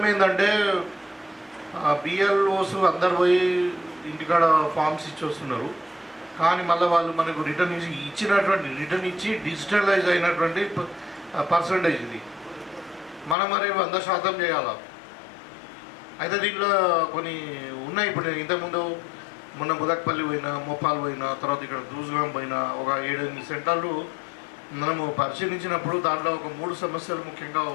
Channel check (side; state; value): right; drops out; at 13.4 s